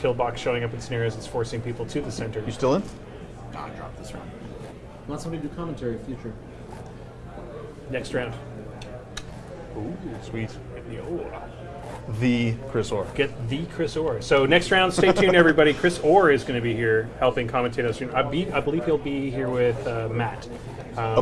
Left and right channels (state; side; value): identical; both; correlation 1.00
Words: showing up in scenarios, it's forcing people to the center. You still in? God, drop this round. Want somebody to do commentary future? Next round. Ooh, sweet. Yo. The Chris Orr. Get the Chris Orr. So next round, stay tuned, everybody. Chris Orr is going to be here helping commentate us. I believe he'll be here with Matt.